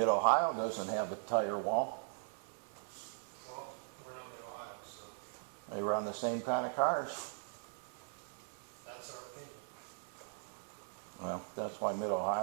doesn't have a tire wall. Well, we're not in Ohio, so They run the same kind of cars. that's our opinion. Well, that's why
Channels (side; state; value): left; silent; 51 dB below the other